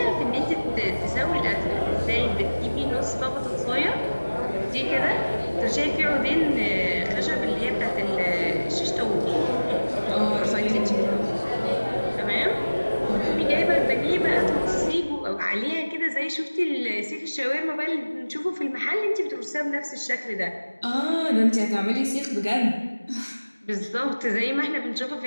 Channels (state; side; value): inverted; both; correlation -1.00